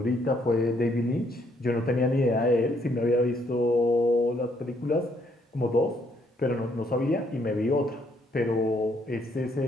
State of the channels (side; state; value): both; normal; correlation 0.70